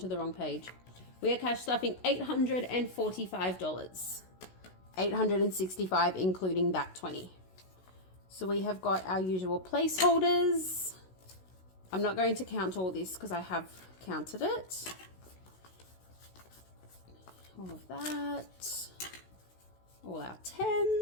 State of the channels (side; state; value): right; late; 16 ms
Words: the wrong page. We are cash stuffing $845. $865 including that 20. So we have got our usual placeholders. I'm not going to count all this because I have counted it. All of that. All our